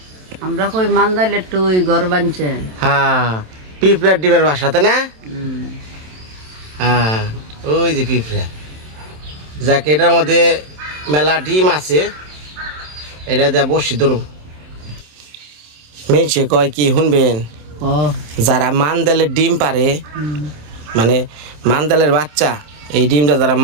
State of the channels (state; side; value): late; left; 27 ms